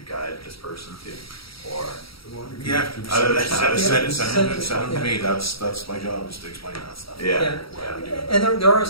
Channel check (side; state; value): right; late; 0.75 ms